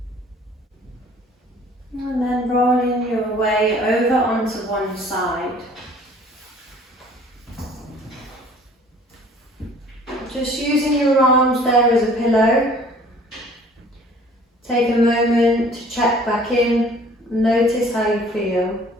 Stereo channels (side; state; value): both; normal; correlation 0.52